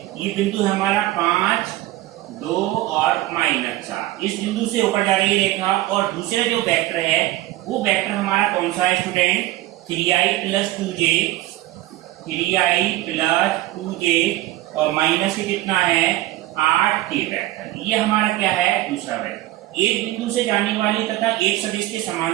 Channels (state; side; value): quieter; left; 16.5 dB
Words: ये बिंदु हमारा 5, 2 और -4, इस बिंदु से होकर जा रही है रेखा। और दूसरे जो वेक्टर है वो वेक्टर हमारा कौन सा है स्टूडेंट, 3i प्लस 2j और माइनस ही कितना है 8k वेक्टर। ये हमारा क्या है दूसरा वेक्टर। एक बिंदु से जाने वाली तथा एक सदिश के